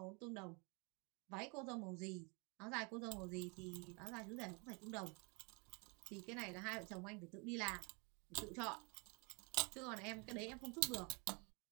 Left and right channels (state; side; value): quieter; left; 32.4 dB